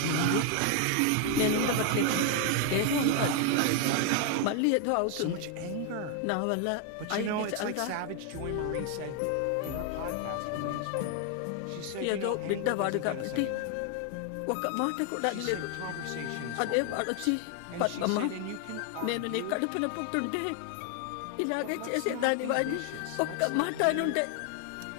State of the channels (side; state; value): both; different; correlation 0.00